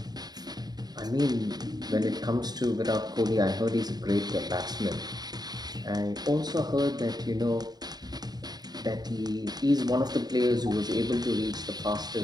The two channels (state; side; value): late; left; 0.19 ms